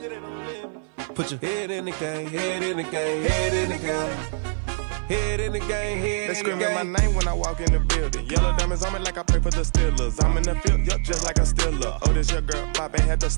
Put your head in the game, head in the game, head in the game. Head in the game, head in the game. They screaming my name when I walk in the building. Yellow diamonds on me like I play for the Steelers. I'm in the field, yup, just like a Steeler. Oh, this your girl, my band had the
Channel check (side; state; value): left; silent; digital silence